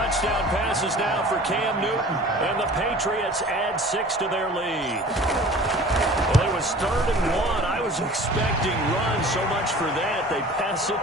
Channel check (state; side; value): normal; both; correlation 0.44